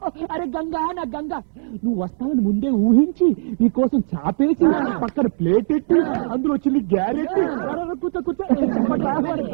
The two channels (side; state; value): left; silent; 66 dB below the other